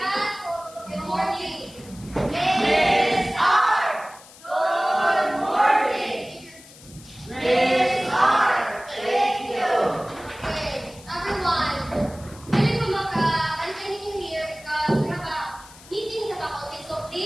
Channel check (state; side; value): noise; left; hiss, 21 dB below the sound